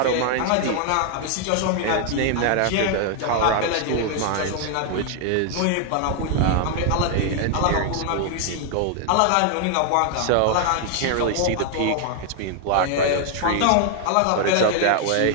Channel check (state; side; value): different; both; correlation 0.00